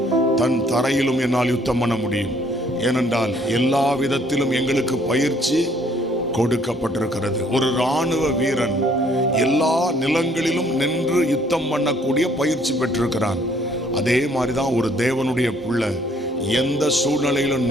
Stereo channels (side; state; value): both; normal; correlation 0.63